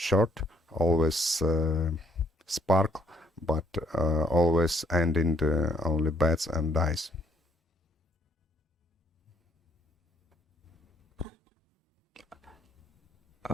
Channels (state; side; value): normal; both; correlation 0.65